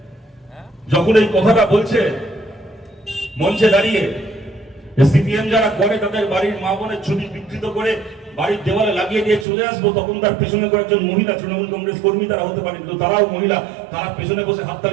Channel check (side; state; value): left; drops out; at 9.5 s